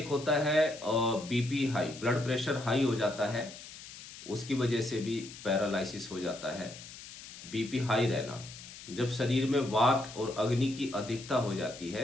होता है BP high, blood pressure high हो जाता है, उसकी वजह से भी पैरालिसिस हो जाता है। बीपी हाई रहना, जब शरीर में वात और अग्नि की अधिकता हो जाती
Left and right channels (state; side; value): noise; left; hiss, 15 dB below the sound